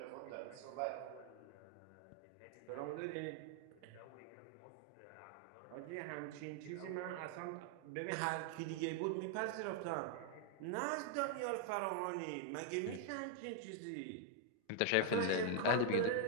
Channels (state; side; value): different; both; correlation -0.01